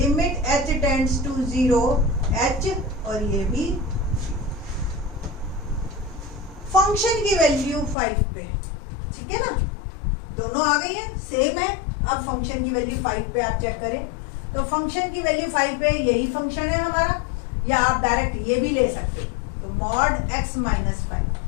h tends to 0 h, और ये भी फंक्शन की वैल्यू 5 पे, ठीक है ना, दोनों आ गई है, सेम है। अब फंक्शन की वैल्यू 5 पे आप चेक करें, तो फंक्शन की वैल्यू 5 पे यही फंक्शन है हमारा, या आप डायरेक्ट ये भी ले सकते हैं, तो मॉड x - 5,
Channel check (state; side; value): drops out; right; at 8.0 s